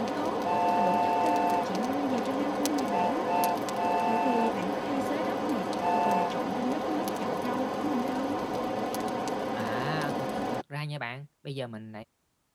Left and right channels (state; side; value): identical; both; correlation 1.00